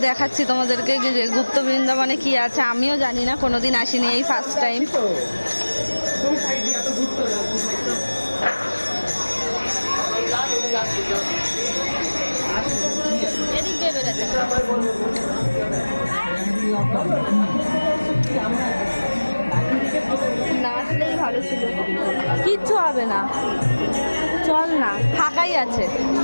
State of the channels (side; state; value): both; inverted; correlation -1.00